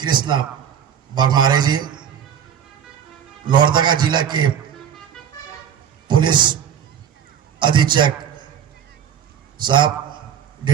बरमारे जी, लोहरदगा जिला के पुलिस अधीक्षक साहब,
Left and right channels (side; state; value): left; quieter; 8.6 dB